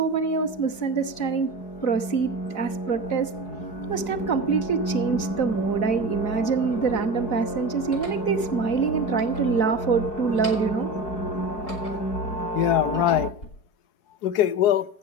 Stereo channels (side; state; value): right; late; 4.8 ms